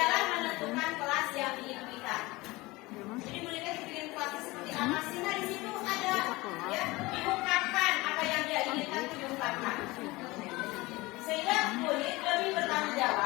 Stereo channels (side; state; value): right; quieter; 21.5 dB